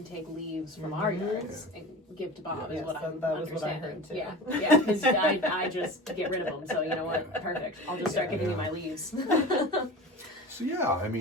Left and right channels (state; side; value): normal; both; correlation 0.33